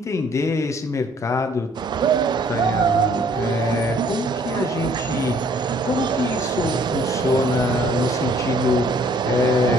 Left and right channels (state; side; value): normal; both; correlation 0.60